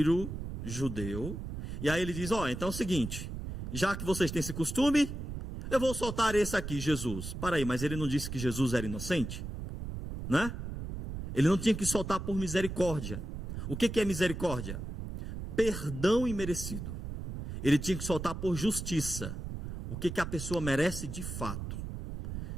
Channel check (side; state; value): right; noise; rumble, 7 dB below the sound